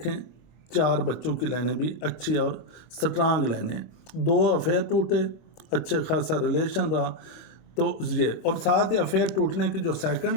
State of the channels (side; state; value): right; late; 25 ms